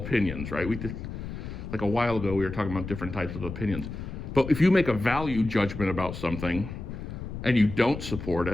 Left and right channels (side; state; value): left; noise; rumble, 8 dB below the sound